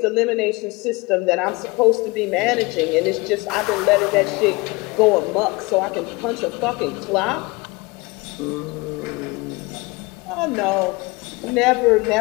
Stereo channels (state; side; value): quieter; right; 24.6 dB